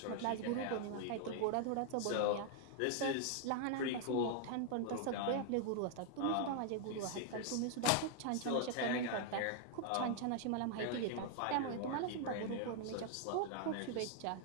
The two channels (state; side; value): different; both; correlation 0.00